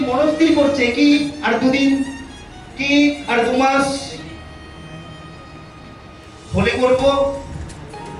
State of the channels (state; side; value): identical; both; correlation 1.00